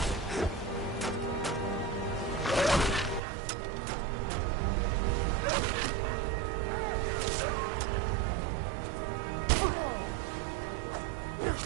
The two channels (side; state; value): left; drops out; at 3.2 s